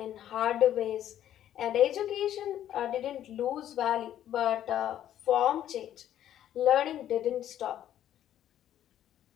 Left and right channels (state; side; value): quieter; right; 11.4 dB